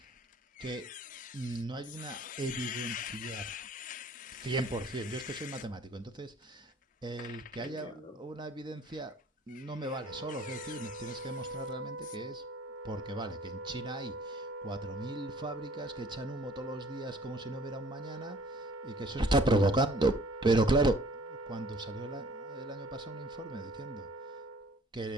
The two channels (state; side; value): normal; both; correlation 0.54